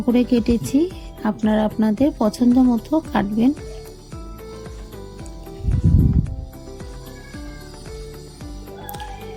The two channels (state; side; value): identical; both; correlation 1.00